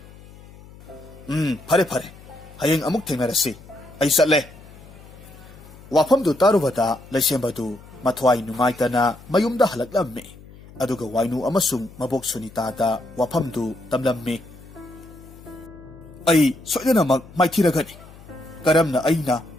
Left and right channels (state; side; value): noise; left; hum, 20 dB below the sound